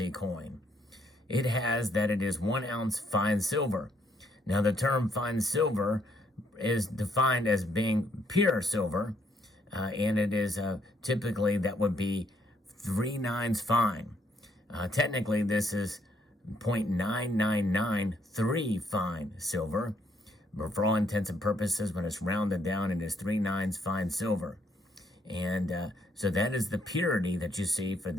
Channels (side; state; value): both; normal; correlation 0.70